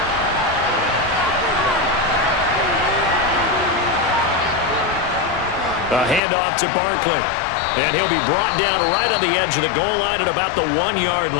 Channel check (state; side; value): drops out; right; at 6.2 s